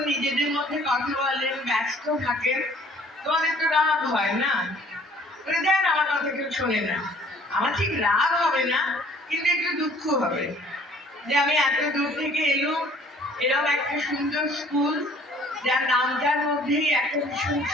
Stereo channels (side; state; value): both; normal; correlation 0.56